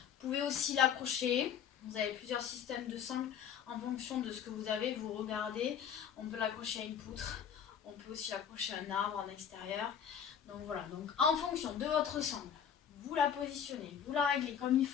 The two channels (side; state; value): right; quieter; 8.3 dB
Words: pouvez aussi l'accrocher. Vous avez plusieurs systèmes de sangles en fonction de ce que vous avez. Vous regardez, on peut l'accrocher à une poutre. On peut aussi l'accrocher à un arbre en extérieur. Donc voilà, donc en fonction de votre sangle, vous la positionnez, vous la réglez comme il